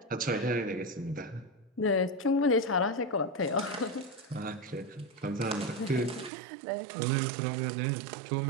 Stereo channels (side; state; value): left; drops out; at 6.3 s